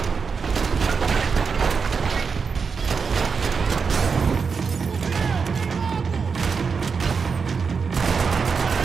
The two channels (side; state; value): left; quieter; 5.5 dB